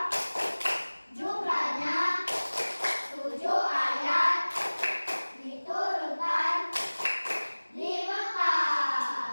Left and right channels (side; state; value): both; inverted; correlation -1.00